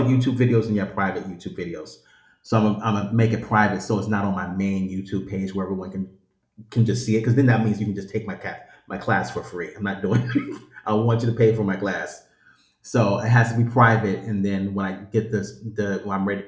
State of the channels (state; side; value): identical; both; correlation 1.00